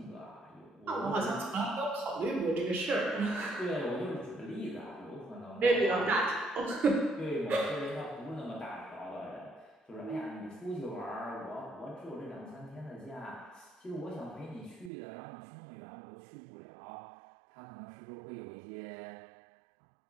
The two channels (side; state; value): left; drops out; at 14.9 s